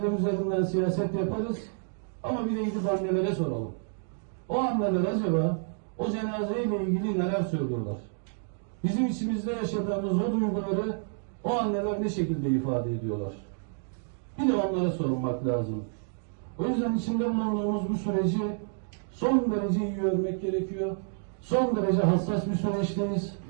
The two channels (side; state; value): left; silent; digital silence